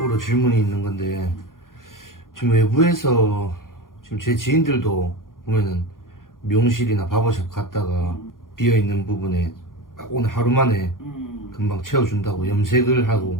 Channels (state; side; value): late; right; 0.90 ms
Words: 질문이 있는 건데 지금 외부에서 지금 제 지인들도 보면은 미용실이나 바버샵 갔다가 비어있는 부분에 오늘 하루 만에 금방 채워준다고 염색을